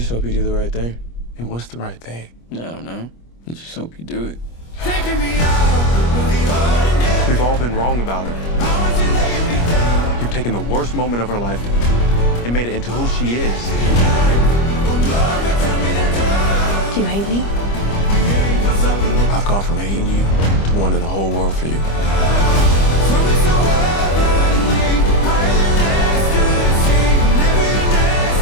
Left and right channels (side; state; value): right; late; 25 ms